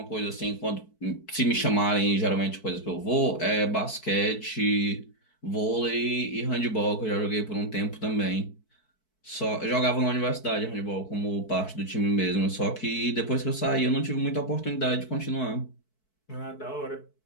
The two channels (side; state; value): right; late; 4.6 ms